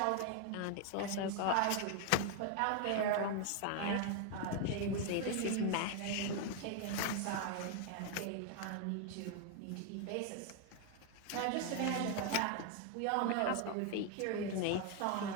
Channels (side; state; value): both; different; correlation 0.01